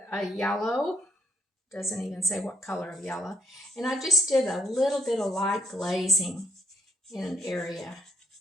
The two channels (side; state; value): both; normal; correlation 0.77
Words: yellow, doesn't even say what color of yellow. And I just did a little bit of light glazing in an area